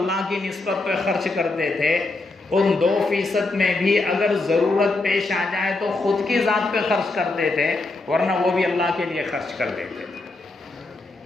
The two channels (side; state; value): right; quieter; 3.2 dB